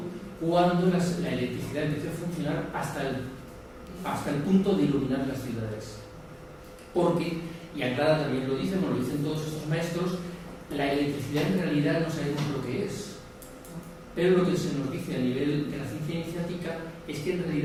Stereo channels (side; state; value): both; identical; correlation 1.00